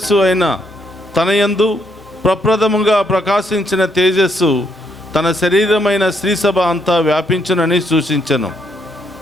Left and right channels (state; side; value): normal; both; correlation 0.74